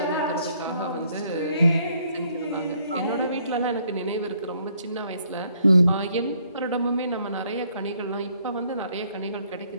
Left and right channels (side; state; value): both; inverted; correlation -0.68